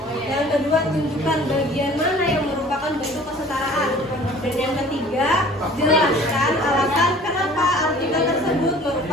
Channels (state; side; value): normal; both; correlation 0.49